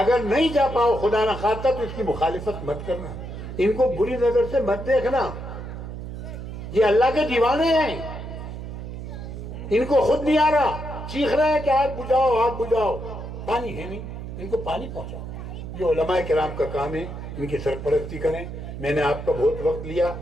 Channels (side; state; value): right; noise; hum, 9 dB below the sound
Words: नहीं जा पाओ खुदा ना खास्ता तो इसकी मुखालिफत मत करना, इनको बुरी नजर से मत देखना। ये अल्लाह के दीवाने हैं, इनको खुद नहीं आ रहा, चीख रहे हैं कि आग बुझाओ आग बुझाओ, पानी है नहीं, इनको पानी पहुंचाओ। ये उलमाए किराम का काम है, इनकी सरपरस्ती करें। मैंने आपका बहुत वक्त लिया,